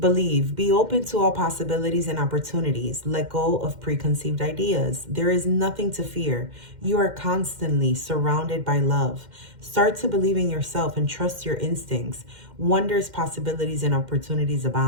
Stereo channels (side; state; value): left; late; 2.1 ms